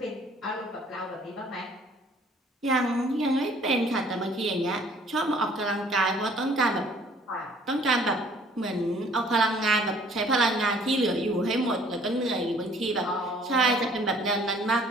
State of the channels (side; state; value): both; normal; correlation 0.56